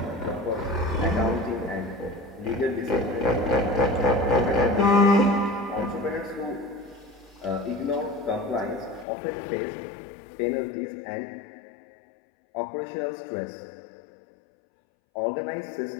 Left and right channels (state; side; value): drops out; right; at 9.1 s